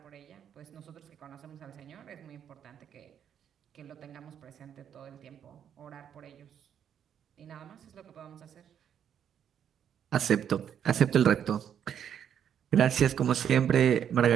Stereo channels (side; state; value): left; quieter; 8.9 dB